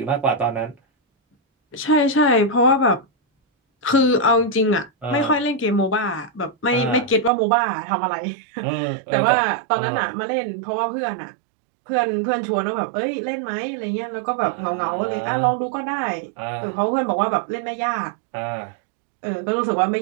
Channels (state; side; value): drops out; left; at 7.3 s